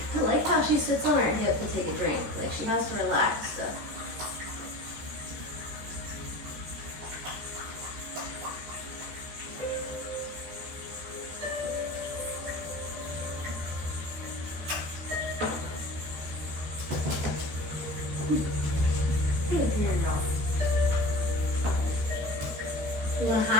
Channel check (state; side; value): late; left; 14 ms